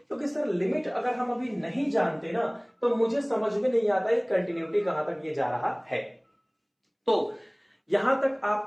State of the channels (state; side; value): identical; both; correlation 1.00